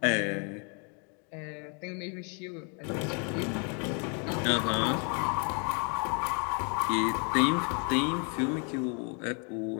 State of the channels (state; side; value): quieter; right; 37.2 dB